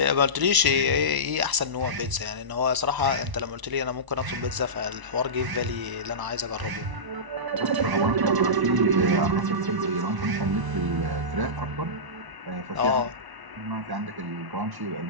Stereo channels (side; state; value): left; late; 1.0 ms